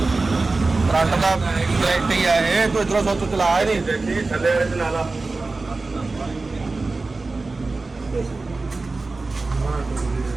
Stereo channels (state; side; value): quieter; left; 3.6 dB